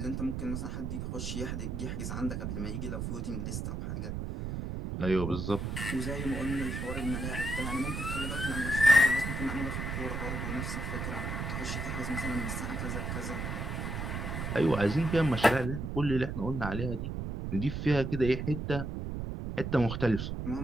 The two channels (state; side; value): noise; right; rumble, 3 dB below the sound